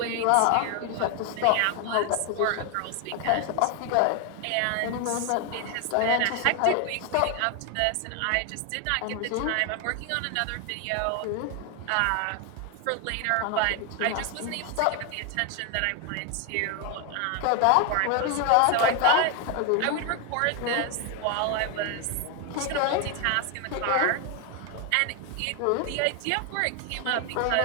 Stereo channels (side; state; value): both; different; correlation 0.01